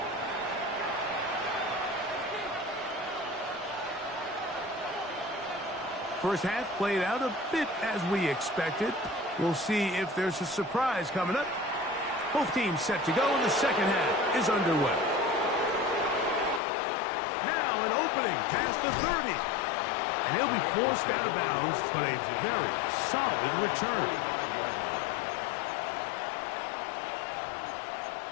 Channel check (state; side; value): drops out; right; at 16.6 s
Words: First half played out a bit as we expected. We'll see if there's a surprise coming up. Both teams set to go, and the second half is underway. Now an opening past the 30. And he'll be forced out of bounds, but a very solid return.